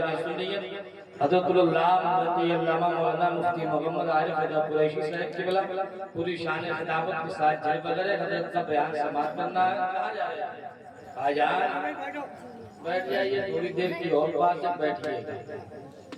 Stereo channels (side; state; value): both; identical; correlation 1.00